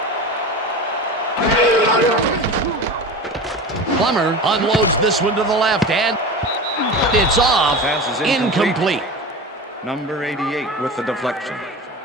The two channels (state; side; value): normal; both; correlation 0.30